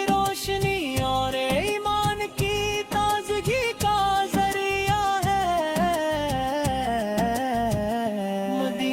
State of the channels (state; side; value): identical; both; correlation 1.00